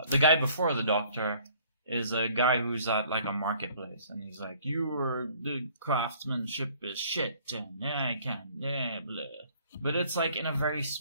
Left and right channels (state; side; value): inverted; both; correlation -0.57